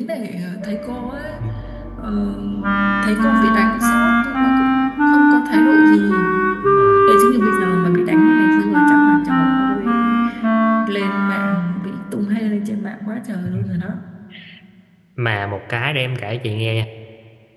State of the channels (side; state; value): both; identical; correlation 1.00